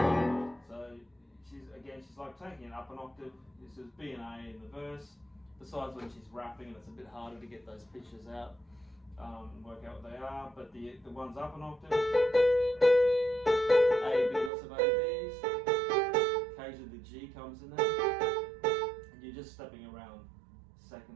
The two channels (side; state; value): left; drops out; at 14.5 s